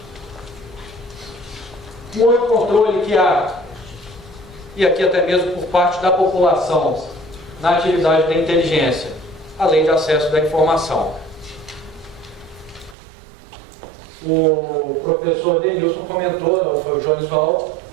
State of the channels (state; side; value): drops out; left; at 13.0 s